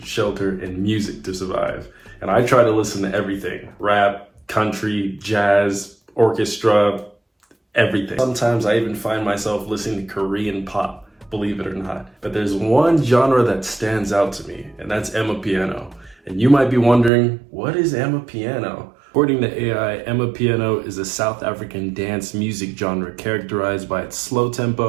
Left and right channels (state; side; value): drops out; left; at 17.1 s